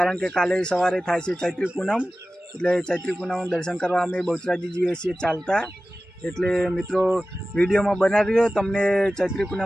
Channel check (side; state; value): both; normal; correlation 0.96